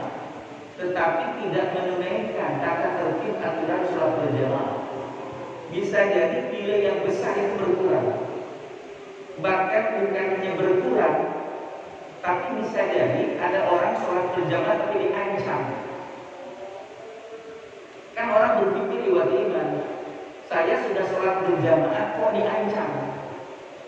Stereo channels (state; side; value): identical; both; correlation 1.00